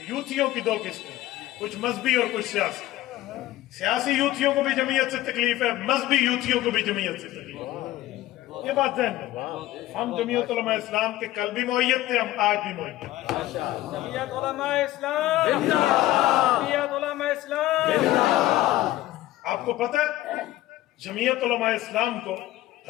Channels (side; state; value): right; quieter; 15.6 dB